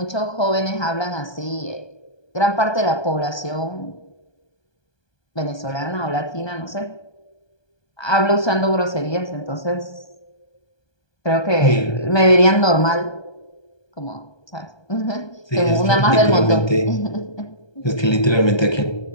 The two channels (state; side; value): late; right; 1.2 ms